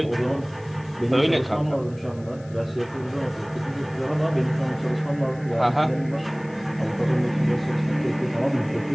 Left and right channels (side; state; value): left; noise; hiss, 27 dB below the sound